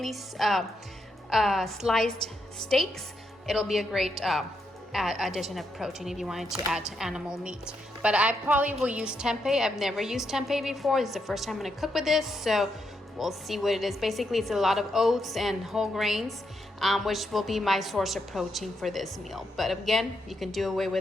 sliced steaks. It'll be a great addition of protein if you wanted to add animal meat. But I probably will use tempeh. I've never used tempeh before. This is the first time I'm going to cook with this, so we'll see what it is. Basically, it's a lot of oats and whole grains, which will be my source of protein for this meal. But again, you can do away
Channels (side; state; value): both; normal; correlation 0.81